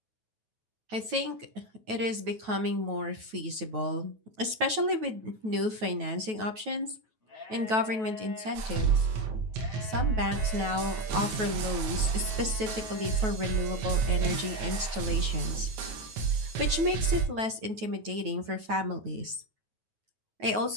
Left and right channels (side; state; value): left; late; 9.2 ms